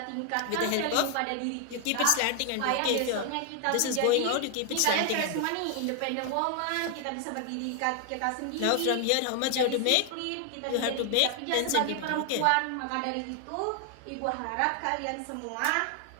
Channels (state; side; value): different; both; correlation 0.00